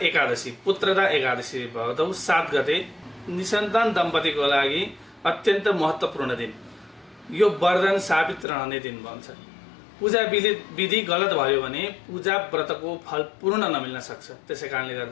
एकादशी, पुत्रदा एकादशी भदौ 7 गते निसन्तान दम्पतिको लागि अत्यन्त महत्त्वपूर्ण दिन। यो वरदान साबित रहने दिन भन्छ। पूजा विधि गलत भयो भने पूजा व्रतको फल पूर्ण नमिल्न सक्छ। त्यसैकारणले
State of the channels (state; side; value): drops out; right; at 8.5 s